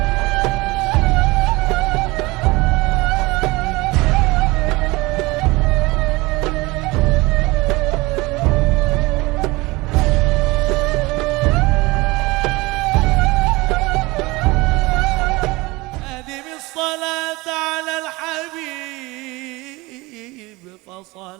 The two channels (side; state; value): left; quieter; 22.6 dB